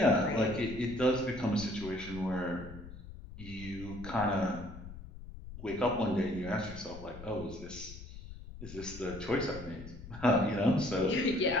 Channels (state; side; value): noise; left; rumble, 13 dB below the sound